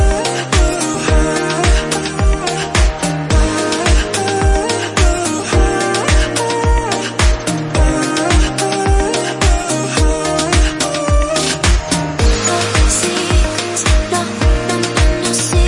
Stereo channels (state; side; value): identical; both; correlation 1.00